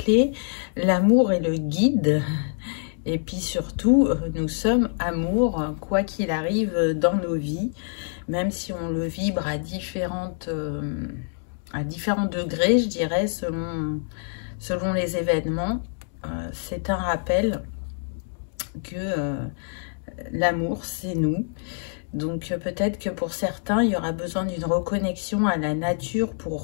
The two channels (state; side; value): silent; right; digital silence